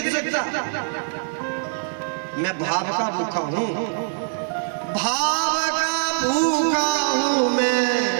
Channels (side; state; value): left; silent; digital silence